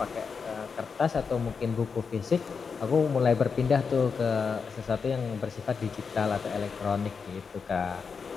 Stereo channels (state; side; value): quieter; right; 5.6 dB